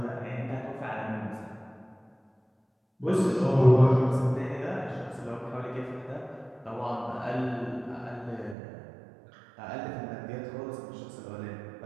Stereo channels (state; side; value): drops out; left; at 8.6 s